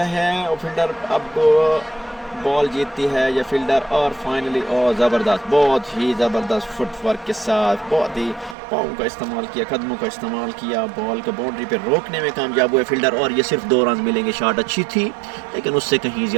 है। और फील्डर अब बॉल जीतती है ये फील्डर और फाइनली ज़बरदस्त, बहुत ही ज़बरदस्त फुटवर्क के साथ बहुत ही पाँव का इस्तेमाल किया, कदमों का इस्तेमाल किया, बॉल को बाउंड्री पे रोकने में कामयाब हुए फील्डर। और ये सिर्फ 2 रन मिलेंगे। शॉट अच्छी थी लेकिन उससे कहीं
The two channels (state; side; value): drops out; left; at 8.6 s